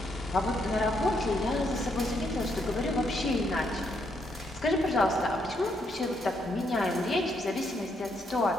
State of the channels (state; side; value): normal; both; correlation 0.76